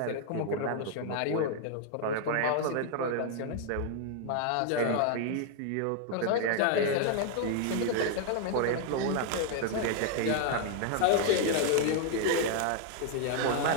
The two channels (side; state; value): both; different; correlation 0.00